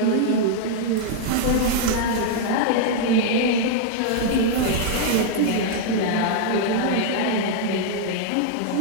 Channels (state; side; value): different; both; correlation 0.00